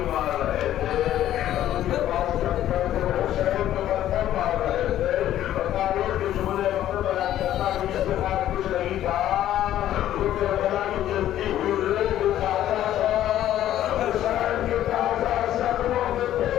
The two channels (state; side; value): quieter; right; 12.3 dB